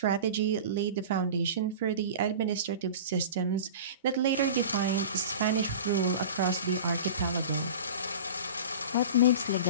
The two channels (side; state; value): both; inverted; correlation -0.34